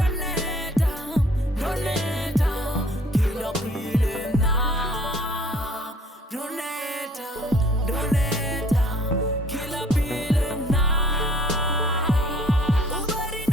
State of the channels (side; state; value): both; normal; correlation 0.56